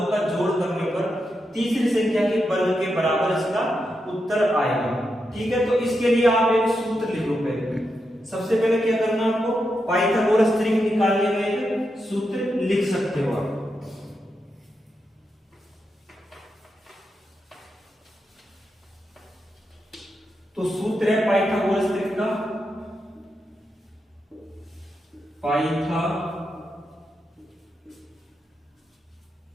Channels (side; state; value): both; normal; correlation 0.86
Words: का जोड़ करने पर तीसरी संख्या के वर्ग के बराबर इसका उत्तर आएगा। ठीक है, तो इसके लिए आप एक सूत्र लिखो। पहले सबसे पहले क्या करना है आपको, पाइथागोरस त्रिक निकालने में एक सूत्र लिख सकते हो आप। तो सूत्र है पाइथागोरस त्रिक का,